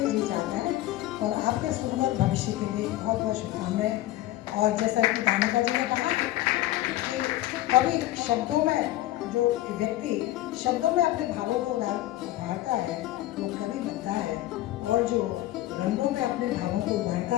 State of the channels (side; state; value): right; quieter; 15.5 dB